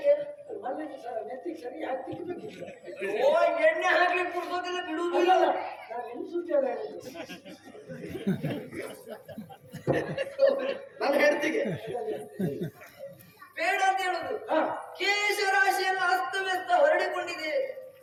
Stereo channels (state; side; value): identical; both; correlation 1.00